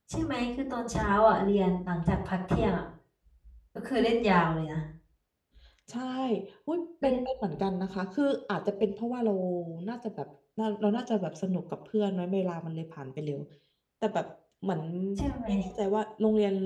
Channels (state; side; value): identical; both; correlation 1.00